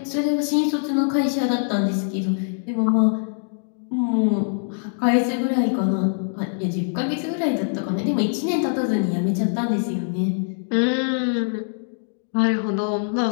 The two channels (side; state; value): right; silent; digital silence